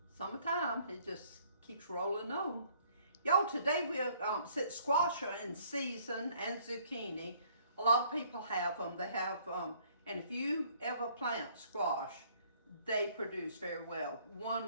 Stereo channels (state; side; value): inverted; both; correlation -0.61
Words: summertime, it just keeps rolling on. Y'all, today we'll squash are in season and zucchini. A lot of people have them. They have, and if you ever plant squash, they produce very well.